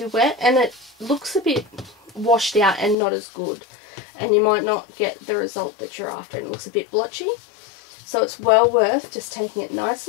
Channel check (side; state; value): right; drops out; at 3.0 s